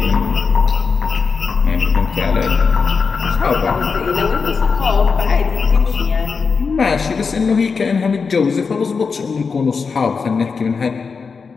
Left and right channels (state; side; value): quieter; right; 5.2 dB